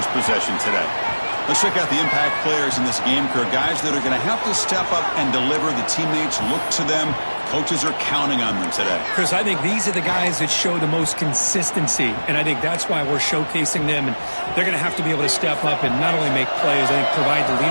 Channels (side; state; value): both; inverted; correlation -1.00